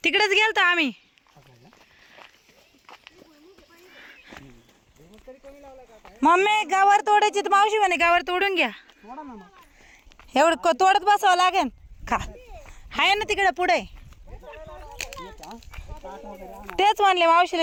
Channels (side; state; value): both; identical; correlation 1.00